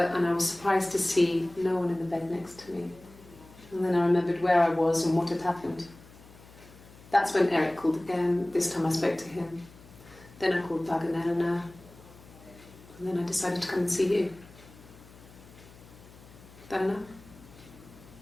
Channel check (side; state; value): left; noise; hum, 22 dB below the sound